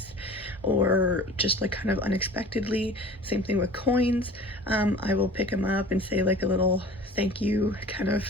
or just like kind of unexpectedly. Same thing with coins. I will pick them up and say like a little thank you kind of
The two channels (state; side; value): normal; both; correlation 0.43